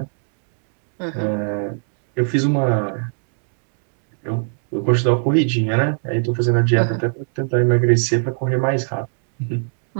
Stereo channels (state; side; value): silent; left; digital silence